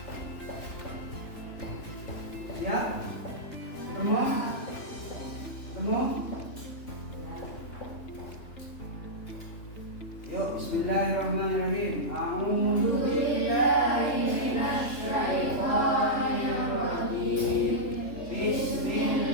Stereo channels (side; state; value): right; late; 3.2 ms